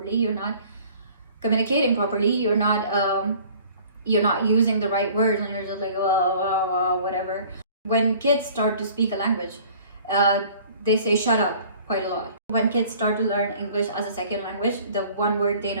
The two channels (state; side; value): inverted; both; correlation -0.50